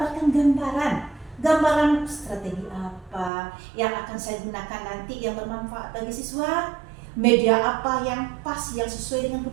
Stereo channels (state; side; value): drops out; left; at 3.3 s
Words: gambaran strategi apa yang akan saya gunakan nanti yang bermanfaat bagi siswa, media apa yang pas, yang sesuai dengan